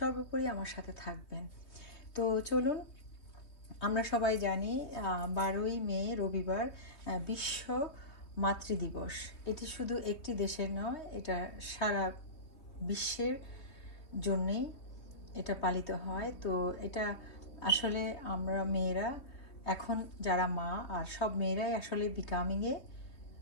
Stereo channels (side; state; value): right; late; 3.2 ms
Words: আমার সাথে থাকবেন। তো চলুন, আমরা সবাই জানি 12ই মে রবিবার বিশ্ব মাতৃদিবস। এটি শুধু একটি দেশের নয়, এটা সারা বিশ্বের জন্যেই এটা পালিত হয়। তো এটা আসলে আমরা মেয়েরা, এখন যারা মা, আর সব মেয়েরাই আসলে বিকামিংয়ে